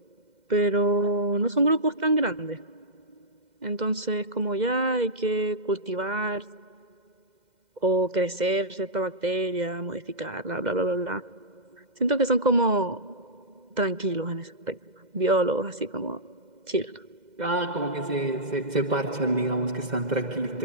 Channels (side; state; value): left; late; 2.0 ms